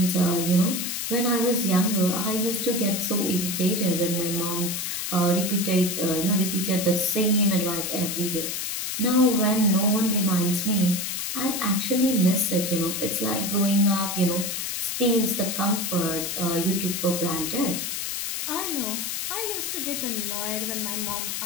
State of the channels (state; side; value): noise; left; hiss, 3 dB below the sound